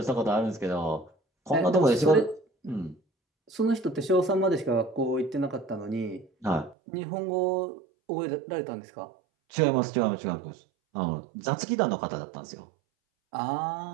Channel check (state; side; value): drops out; left; at 6.8 s